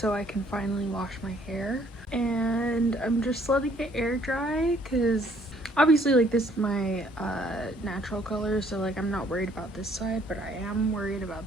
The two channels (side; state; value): both; normal; correlation 0.62